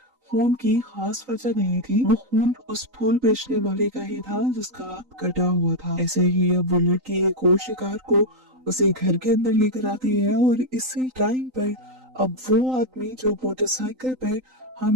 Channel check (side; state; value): left; late; 3.9 ms